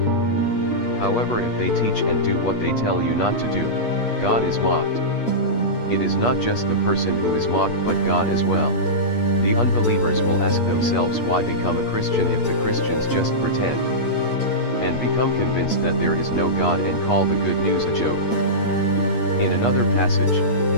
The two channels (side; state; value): right; late; 8.4 ms